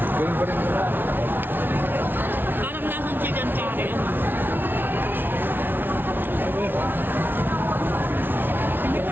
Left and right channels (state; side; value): late; left; 0.098 ms